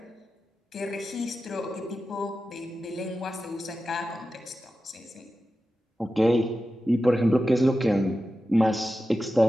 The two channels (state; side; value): normal; both; correlation 0.92